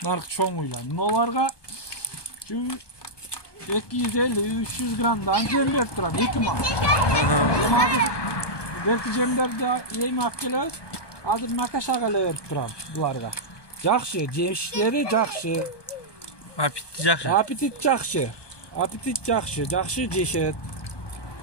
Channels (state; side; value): late; right; 1.2 ms